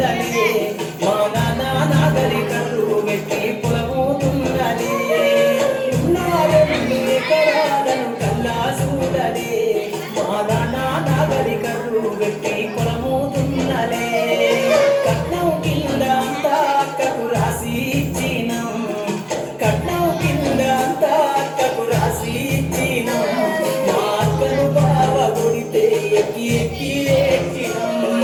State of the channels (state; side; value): identical; both; correlation 1.00